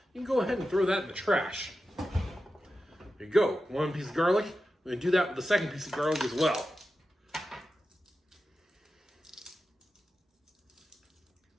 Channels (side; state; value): both; normal; correlation 0.92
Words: You can go ahead and throw that in the trash. There you go, one piece of garlic. We're gonna do that with the second piece of garlic as well.